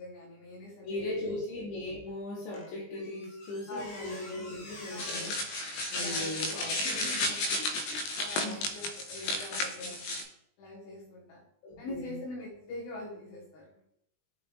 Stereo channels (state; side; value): late; right; 20 ms